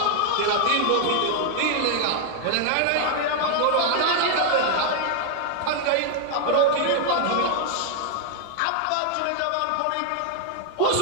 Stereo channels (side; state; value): both; different; correlation 0.00